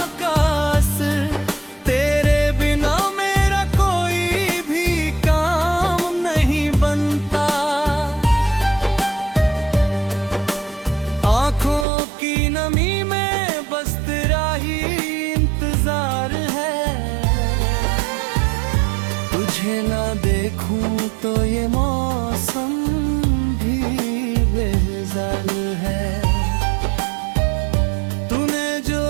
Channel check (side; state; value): left; drops out; at 11.9 s